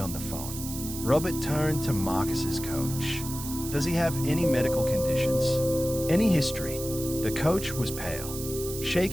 the phone. Robert turned to Marcus's coach. "Does he have any medical conditions? Any history?" The coach was pale,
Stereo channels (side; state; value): right; noise; hiss, 9 dB below the sound